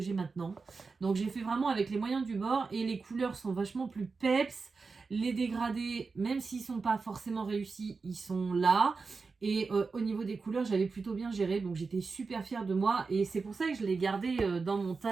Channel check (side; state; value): left; quieter; 4.5 dB